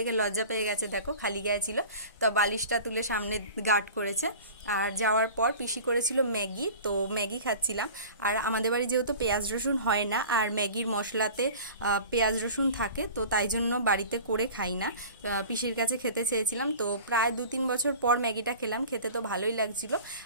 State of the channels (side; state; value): both; inverted; correlation -0.40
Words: লজ্জা পেয়ে গেছে, দেখো খালি গায়ে ছিল। তো বালিশটা তুলে সামনে গার্ড করেছে। আর যাওয়ার পর পিসি করেছিল ম্যাগি, তো ম্যাগি খাচ্ছিলাম। আর আমাদের বাড়ি যেহেতু পেঁয়াজ রসুন হয় না, আর ম্যাগির মশলাতে পেঁয়াজ রসুন থাকে, তো তাই জন্য বাড়িতে করে খাই না। পিসির কাছে খেতে চেয়েছিলাম, তো প্রায় 2-3 বছর পর ম্যাগিটা খেলাম। খেতে তো ভালোই লাগছিল।